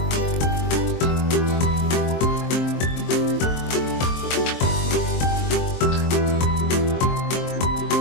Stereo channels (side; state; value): right; late; 23 ms